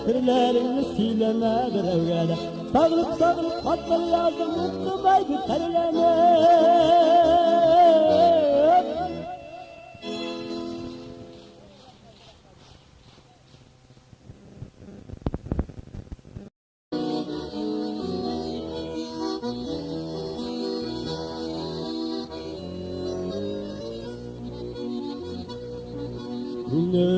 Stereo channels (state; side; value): identical; both; correlation 1.00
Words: sırlarını sileme bir evvele. Sağlık sağlık hatları yazdım mutlu baydı terleme.